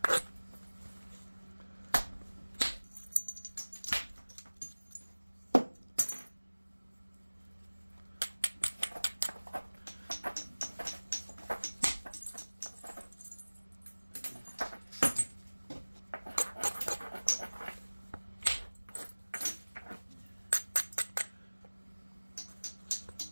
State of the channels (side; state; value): both; inverted; correlation -1.00